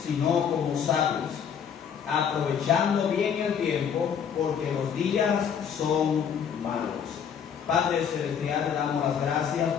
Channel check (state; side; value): quieter; right; 7.7 dB